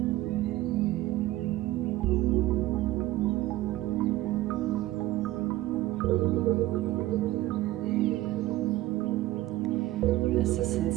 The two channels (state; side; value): quieter; left; 16.6 dB